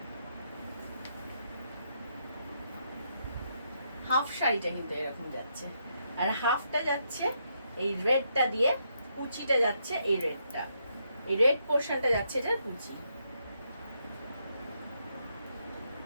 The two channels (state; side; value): inverted; both; correlation -0.78